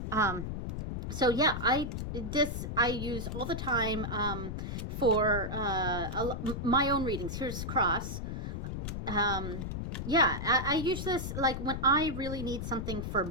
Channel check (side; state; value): left; noise; rumble, 4 dB below the sound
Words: So yeah, I use all the time for my own readings. Here's cross. Yeah, I use this like when I really need something for